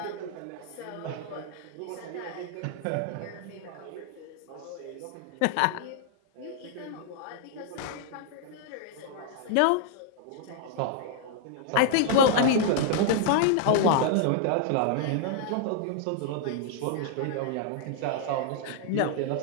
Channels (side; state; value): both; different; correlation -0.01